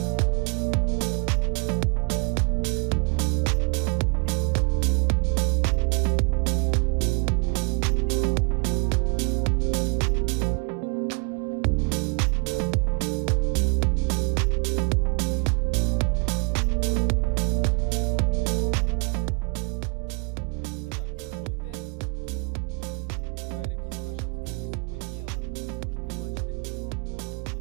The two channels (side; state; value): left; quieter; 34.8 dB